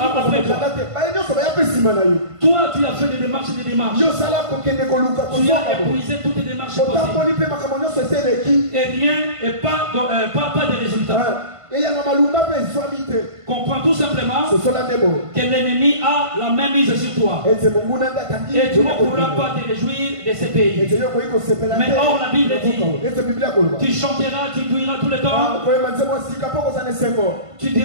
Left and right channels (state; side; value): late; left; 1.5 ms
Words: toi tu as fait des démarches. Tu as épuisé toutes les démarches possibles. Et rien, et pas de résultats. Comprends tout simplement que l'ennemi a la même mise sur toi. Et tu ne pourras pas te réjouir de ce pays. Mais or la Bible dit, tu chanteras, tu diras tout le temps. Tu